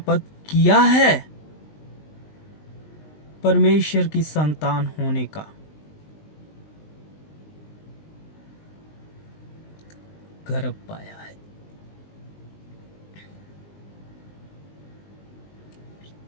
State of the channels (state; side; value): late; right; 19 ms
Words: किया है। परमेश्वर की संतान होने का गर्व पाया है।